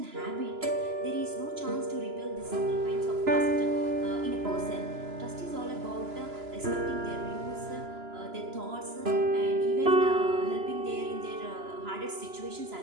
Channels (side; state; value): left; late; 3.0 ms